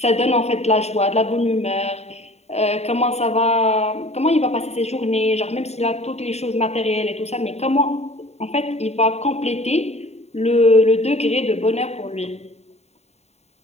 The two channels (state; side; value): late; right; 0.31 ms